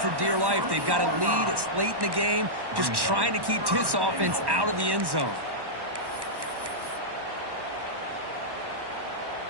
dear life. They've got a lead. It's late in the game. Just trying to keep this offense out of the end zone.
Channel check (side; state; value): left; late; 1.1 ms